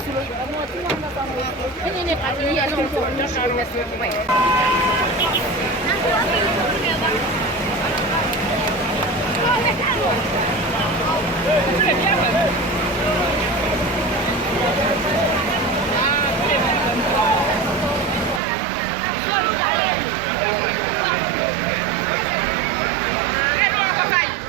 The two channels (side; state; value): left; drops out; at 18.4 s